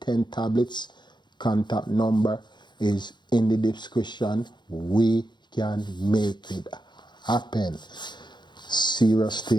10 tablets, contact number is in the description. We can make it happen. Serious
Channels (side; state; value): right; late; 0.22 ms